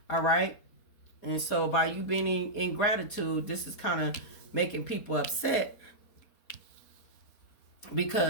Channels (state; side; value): late; right; 4.3 ms